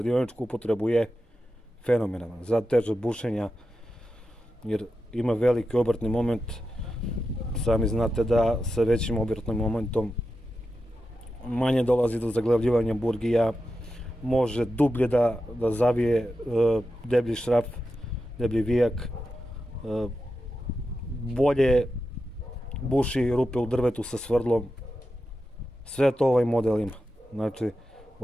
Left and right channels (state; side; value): normal; both; correlation 0.90